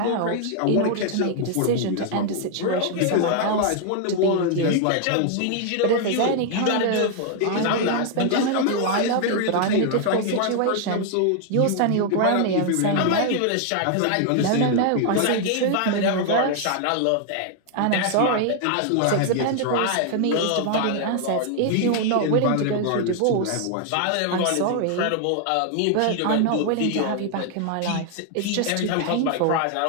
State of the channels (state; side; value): different; both; correlation 0.00